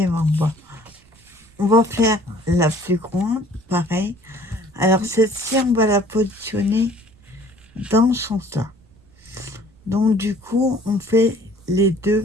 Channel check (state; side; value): noise; right; rumble, 29 dB below the sound